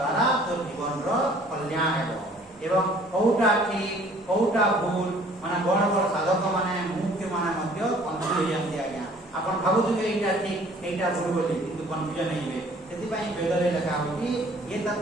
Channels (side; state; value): both; normal; correlation 0.55